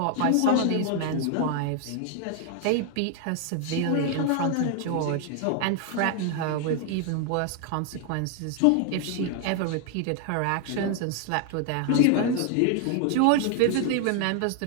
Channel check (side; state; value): both; different; correlation 0.00